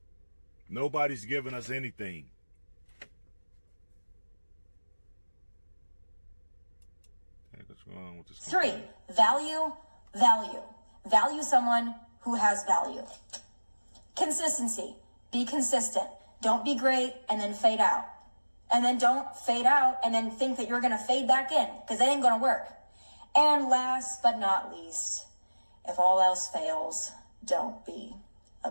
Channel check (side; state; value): both; inverted; correlation -1.00